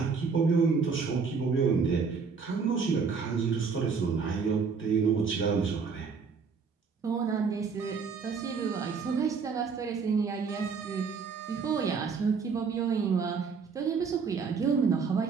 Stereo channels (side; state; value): left; quieter; 5.4 dB